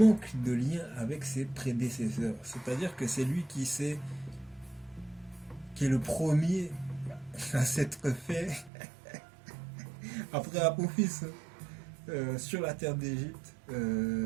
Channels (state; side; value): drops out; left; at 8.7 s